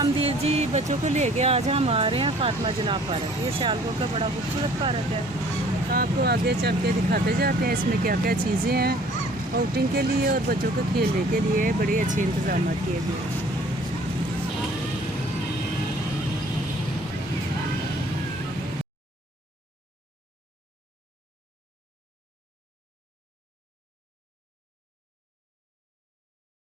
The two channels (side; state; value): both; normal; correlation 0.55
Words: जी। बच्चों को लेके आज हम आ रहे हैं फातिमा जनाब पार्क। ये सियालकोट का बड़ा खूबसूरत पार्क है। तो आपको आगे चल के दिखाते जाते हैं इसमें क्या क्या चीज़ें हैं आउटिंग के लिए और बच्चों को खेलने के लिए बड़े अच्छे इंतजाम किए गए हैं।